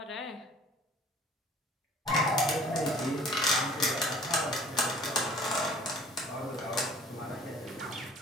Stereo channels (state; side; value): normal; both; correlation 0.49